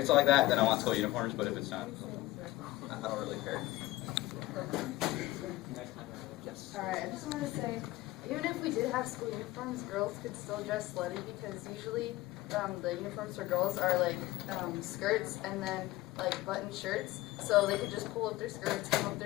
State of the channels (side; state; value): right; quieter; 18.0 dB